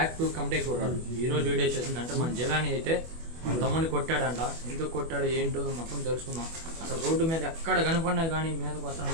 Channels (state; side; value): late; left; 24 ms